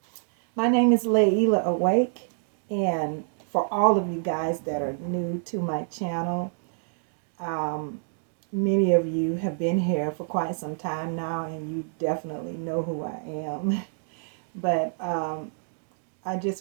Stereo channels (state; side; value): silent; left; digital silence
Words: my name is Layla Awake, and for all of you guys that are new to my channel, um, many of you have been here for quite some time now, and you definitely know who I am. But I just